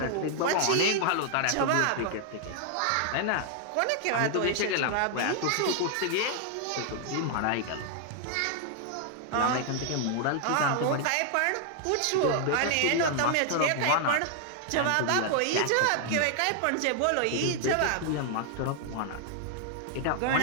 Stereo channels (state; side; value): different; both; correlation 0.00